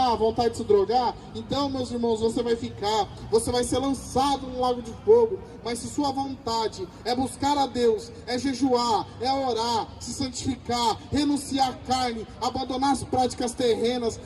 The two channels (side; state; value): both; identical; correlation 1.00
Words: vontade de se drogar? Então, meus irmãos, você vai ser lançado no lago de fogo. Mas se sua vontade é buscar a Deus, é jejuar, é orar, se santificar, renunciar à carne, abandonar as práticas terrenas,